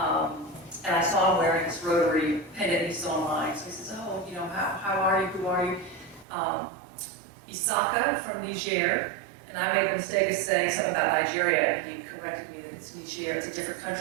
And I saw him wearing this Rotary pendant he saw mine. So he says, oh, how are you? Who are you? Isaka from Niger, and I made the mistake of saying something about Nigeria, and he corrected me that it's Niger, it's a different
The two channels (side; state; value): left; drops out; at 6.2 s